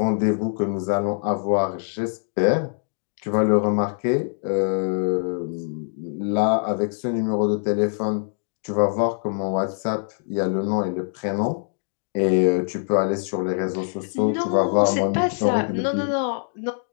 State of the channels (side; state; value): right; silent; digital silence